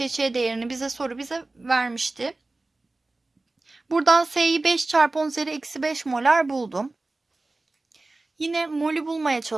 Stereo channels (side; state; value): left; quieter; 3.2 dB